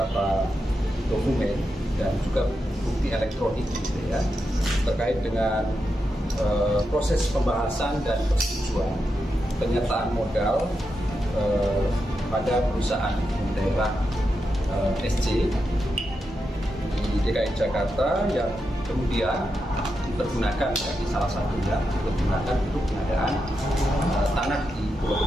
dokumen dan juga bukti elektronik gitu ya, terkait dengan proses pembahasan dan persetujuan penyertaan modal pada perusahaan daerah SC di DKI Jakarta yang kemudian dipergunakan di salah satunya dipergunakan untuk pengadaan tanah di Pulau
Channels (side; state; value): both; normal; correlation 0.86